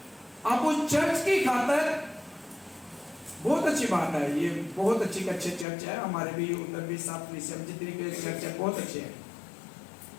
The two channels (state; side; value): drops out; right; at 5.7 s